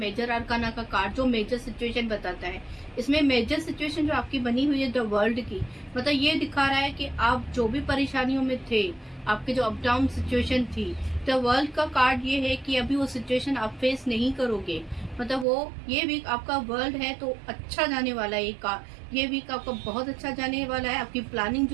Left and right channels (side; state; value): left; drops out; at 15.5 s